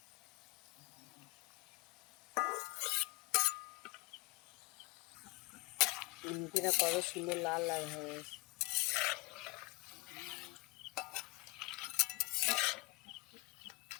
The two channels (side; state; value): right; quieter; 23.6 dB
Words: নিমকিটা কত সুন্দর লাল লাল হয়ে গেছে।